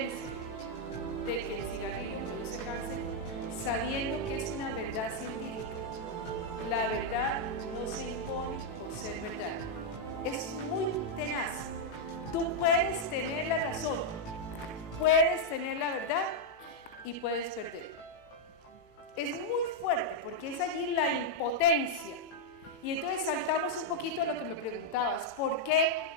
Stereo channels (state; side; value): late; right; 18 ms